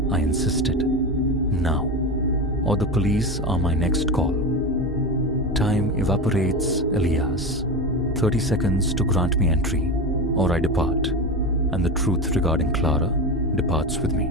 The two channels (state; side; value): normal; both; correlation 0.21